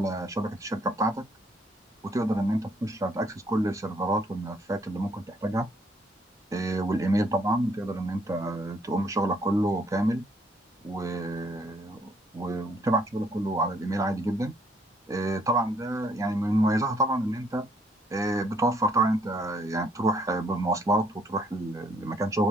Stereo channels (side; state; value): both; normal; correlation 0.67